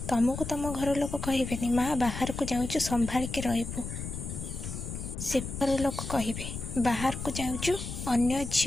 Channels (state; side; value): noise; left; rumble, 7 dB below the sound